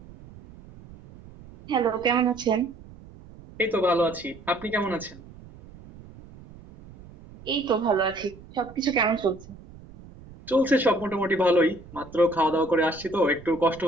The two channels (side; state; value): right; noise; rumble, 20 dB below the sound